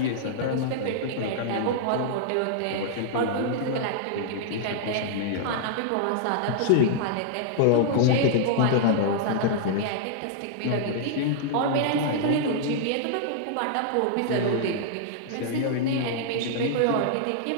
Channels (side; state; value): both; different; correlation -0.01